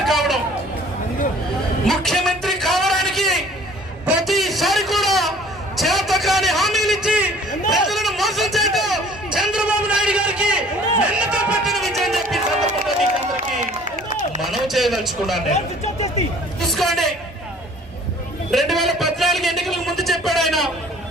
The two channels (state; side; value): normal; both; correlation 0.52